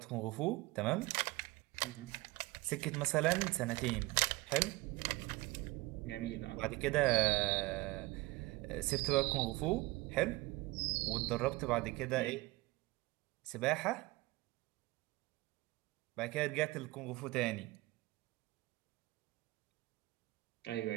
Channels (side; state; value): left; quieter; 21.2 dB